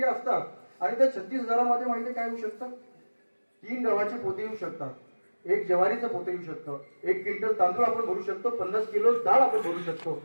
असतात आणि त्या 36,000 माहिती काय होऊ शकतं? 3 गव्हाचे पोते येऊ शकतात, 1 ज्वारीचं पोते येऊ शकतं, 1 क्विंटल तांदूळ आपण भरू शकतो, 50 किलो डाळ आपण भरू शकतो,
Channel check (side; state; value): both; inverted; correlation -1.00